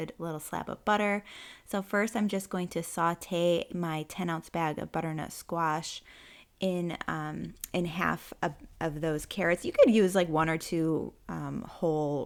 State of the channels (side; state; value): both; identical; correlation 1.00